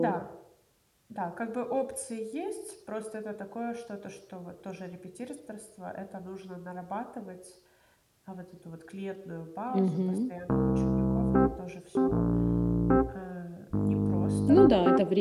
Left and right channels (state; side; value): identical; both; correlation 1.00